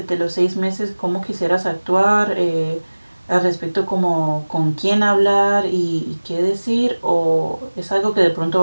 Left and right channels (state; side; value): inverted; both; correlation -1.00